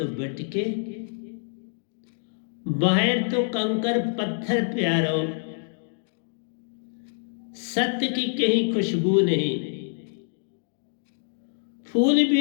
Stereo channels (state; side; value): silent; right; digital silence